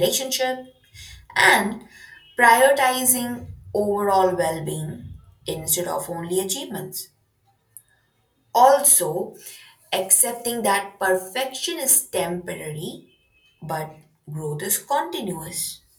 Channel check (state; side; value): identical; both; correlation 1.00